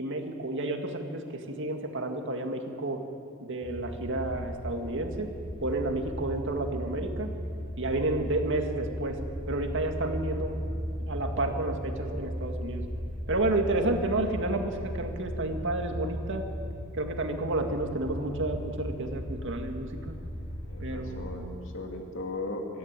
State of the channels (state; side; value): normal; both; correlation 0.21